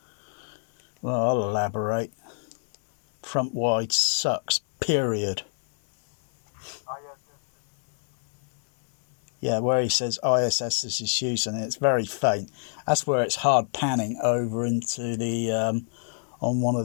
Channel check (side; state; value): right; silent; digital silence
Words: Well, I'll elaborate. Front wide sucks, period. Yeah, where he says ISS is used, and it's very faint. That's where it's hard panning over into the on one